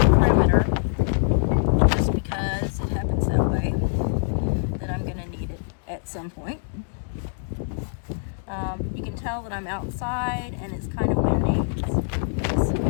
perimeter, just because it happens that way, that I'm going to need it at some point. You can tell that I'm outside and it's kind of windy. It's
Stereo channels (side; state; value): right; silent; digital silence